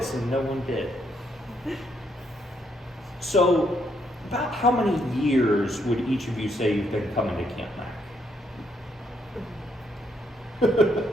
and no one did. So, about how many years would each of you say you've been coming to Camp Mac?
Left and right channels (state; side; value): normal; both; correlation 0.74